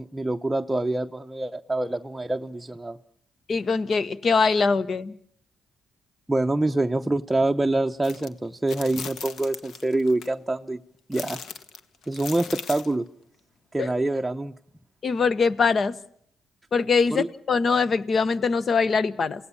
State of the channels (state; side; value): normal; both; correlation 0.89